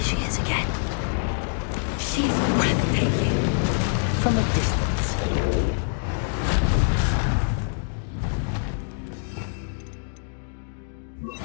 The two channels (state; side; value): silent; right; digital silence